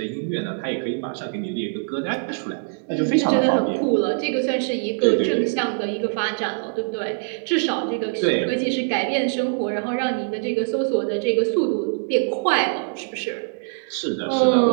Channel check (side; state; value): left; silent; digital silence